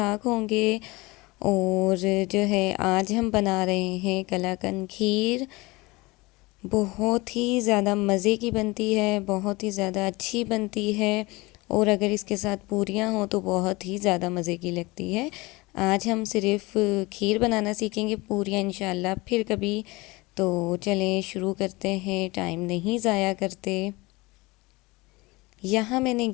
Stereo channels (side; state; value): right; quieter; 23.0 dB